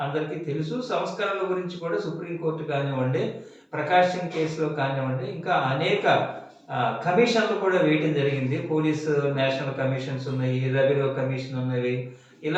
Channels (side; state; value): both; identical; correlation 1.00